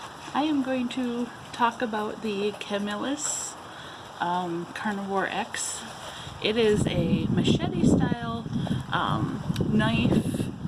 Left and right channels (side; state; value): both; identical; correlation 1.00